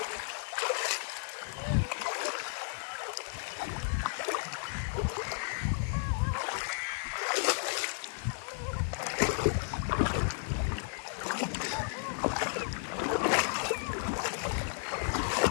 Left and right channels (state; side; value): silent; right; digital silence